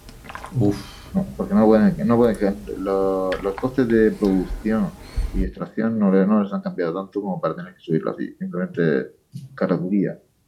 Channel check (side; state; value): both; identical; correlation 1.00